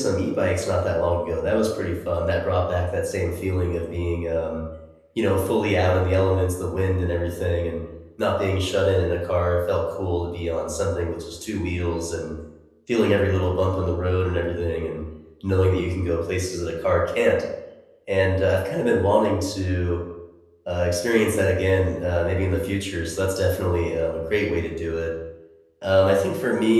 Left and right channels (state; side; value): identical; both; correlation 1.00